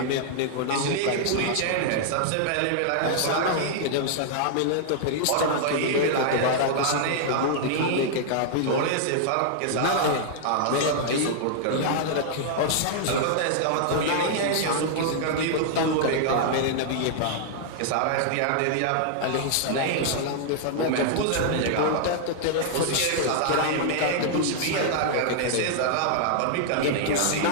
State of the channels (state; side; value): different; both; correlation -0.01